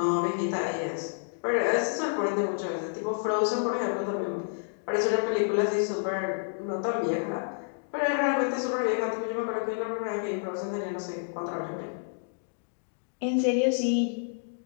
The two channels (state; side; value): silent; right; digital silence